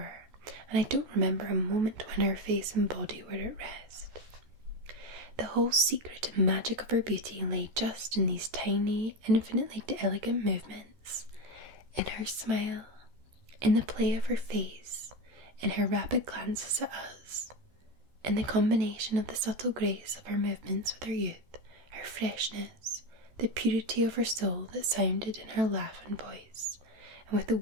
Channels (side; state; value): left; late; 14 ms